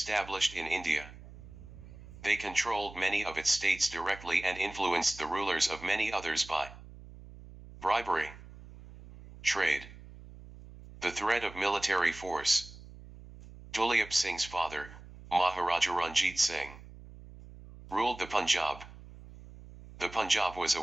in India. They controlled many of its states directly and influenced the rulers of many others by bribery, trade, the threat of military force. Duleep Singh's father, Maharaja Ranjit Singh, ruled the Punjab. The Punjab was a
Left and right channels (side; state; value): right; noise; hum, 17 dB below the sound